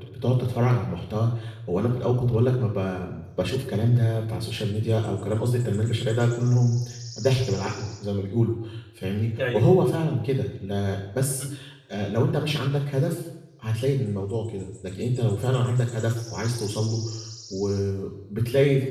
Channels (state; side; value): identical; both; correlation 1.00